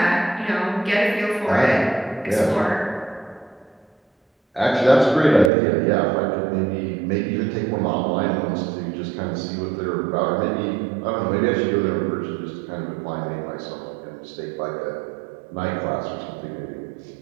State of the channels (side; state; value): left; drops out; at 5.5 s